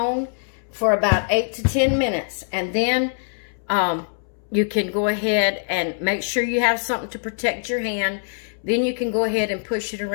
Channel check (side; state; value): right; silent; 63 dB below the other